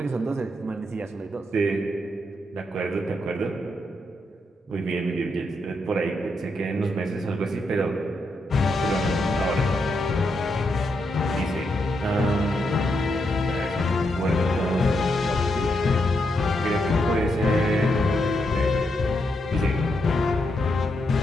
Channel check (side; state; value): both; normal; correlation 0.81